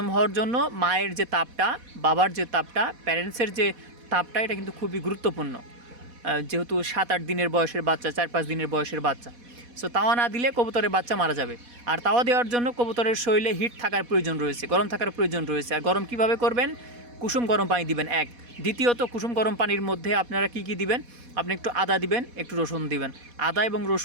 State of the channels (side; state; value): left; late; 4.1 ms